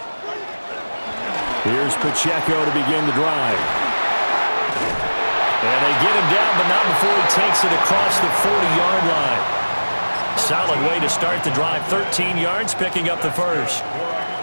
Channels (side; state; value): both; inverted; correlation -1.00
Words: Here's Pacheco to begin the drive. And they get him down, but not before he takes it across the 40-yard line. Solid way to start the drive. 13 yards, picking up the first.